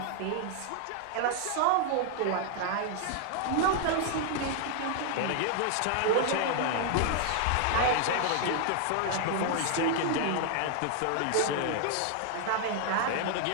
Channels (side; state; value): both; different; correlation 0.00